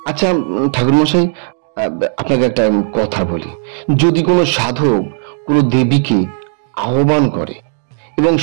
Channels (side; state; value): left; silent; 70 dB below the other